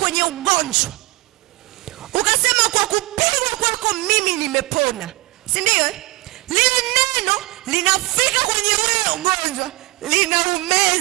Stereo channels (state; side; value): quieter; left; 22.2 dB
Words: kwenye ugonjwa, ukasema kwa kupigwa kwako mimi nimepona. Si ndio? Lile neno linafika kwenye ule ugonjwa,